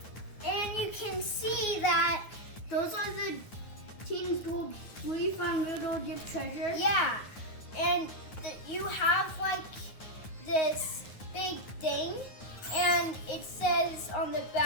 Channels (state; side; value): late; right; 9.5 ms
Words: And you can see that those are the Team's Gold we found little dip treasure. Yeah, and you have like this big thing, and it says on the